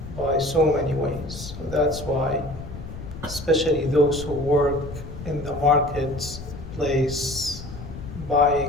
by so many ways. So that's why, especially those who work in the marketplace,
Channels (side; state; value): left; noise; rumble, 11 dB below the sound